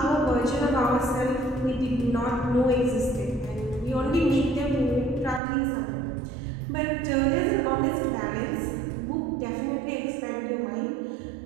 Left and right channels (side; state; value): left; drops out; at 5.4 s